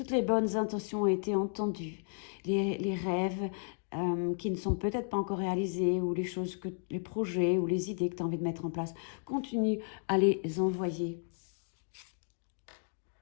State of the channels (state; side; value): silent; right; 55 dB below the other